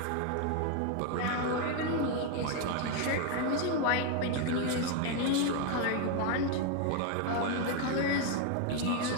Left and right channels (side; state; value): both; different; correlation 0.01